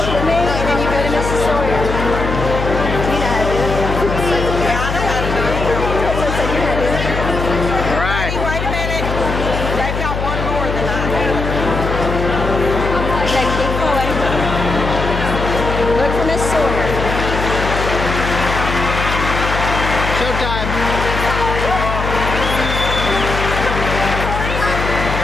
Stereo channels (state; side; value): noise; left; hum, 3 dB below the sound